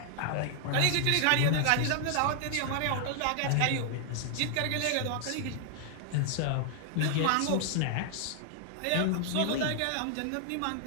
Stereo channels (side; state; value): both; different; correlation 0.00